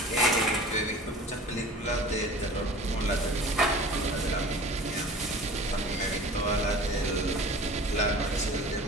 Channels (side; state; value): both; normal; correlation 0.41